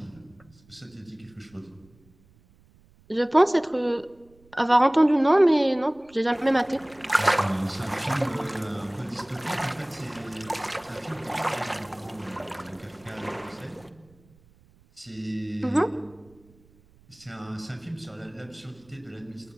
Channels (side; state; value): right; noise; rumble, 29 dB below the sound